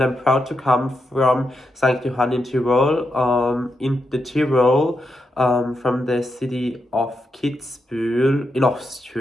I'm proud to come from St. Johann in Tyrol, in the Tyrol, from the city of Kitzbühel in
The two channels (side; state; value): both; normal; correlation 0.85